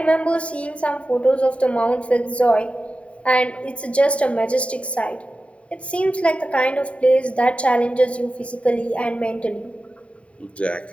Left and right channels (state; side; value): late; right; 0.063 ms